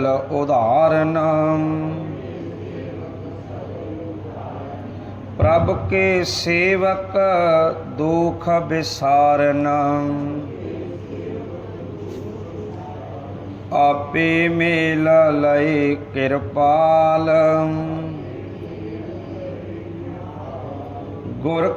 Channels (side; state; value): both; identical; correlation 1.00